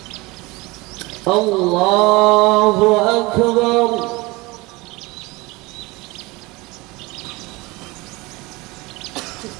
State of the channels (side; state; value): left; quieter; 23.2 dB